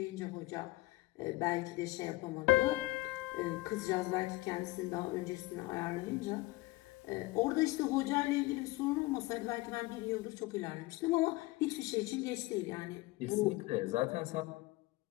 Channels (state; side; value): quieter; right; 21.2 dB